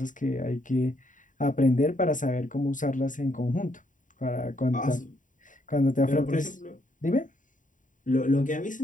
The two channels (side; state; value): right; late; 0.38 ms